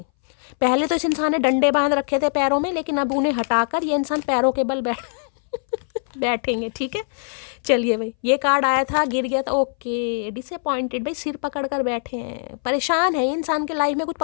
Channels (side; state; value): right; silent; 62 dB below the other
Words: पहले तो इस इंसान ने डंडे बांध रखे थे पैरों में, लेकिन अब उन्हें हटाकर ये इंसान पैरों के बल बैठेंगे। ठीक है, चलिए भाई, ये कार्ड आया था, गिर गया था, ओके। डिसअपॉइंटेड भाई, सिर पकड़ कर बैठे हैं, परेशान है इंसान के लाइफ में, कुछ